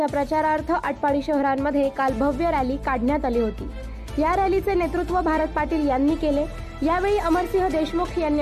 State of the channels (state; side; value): identical; both; correlation 1.00